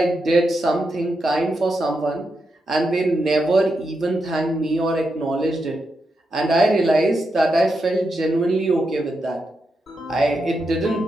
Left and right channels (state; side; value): normal; both; correlation 0.85